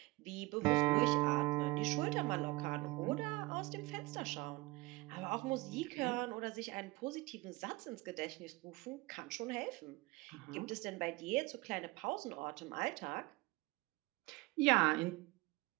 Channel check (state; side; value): quieter; left; 22.5 dB